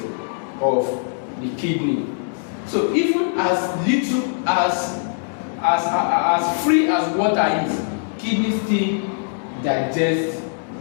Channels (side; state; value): right; silent; digital silence